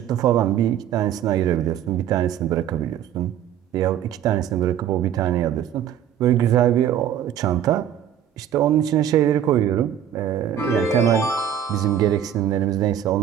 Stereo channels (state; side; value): quieter; left; 9.9 dB